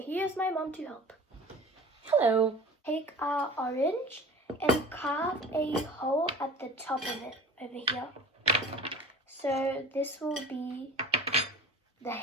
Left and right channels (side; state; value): both; normal; correlation 0.40